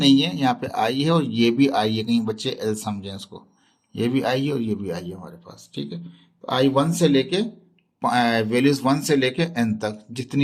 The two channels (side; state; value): both; identical; correlation 1.00